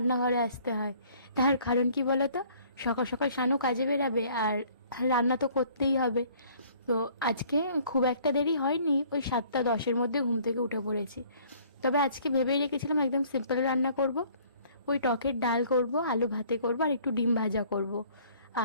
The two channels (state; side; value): inverted; both; correlation -0.56